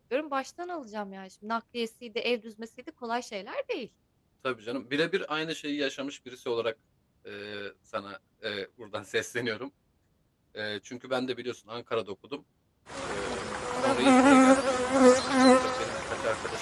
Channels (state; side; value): identical; both; correlation 1.00